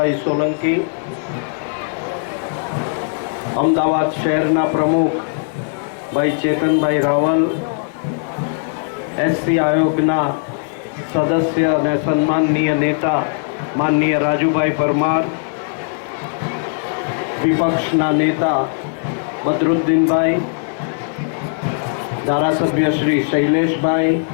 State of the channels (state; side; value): silent; right; digital silence